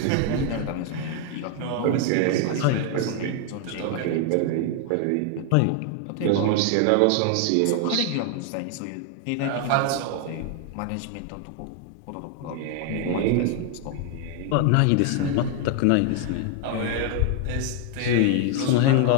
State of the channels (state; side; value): different; both; correlation 0.00